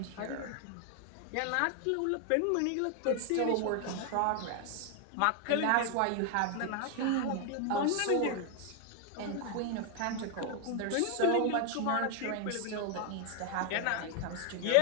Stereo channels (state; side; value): different; both; correlation 0.00